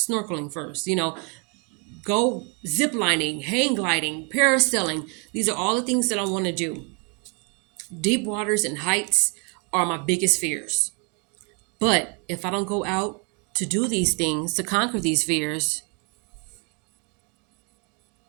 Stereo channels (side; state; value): left; quieter; 35.0 dB